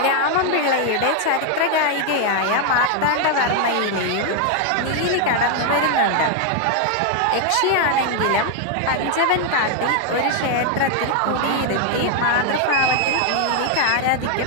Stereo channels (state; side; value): different; both; correlation 0.00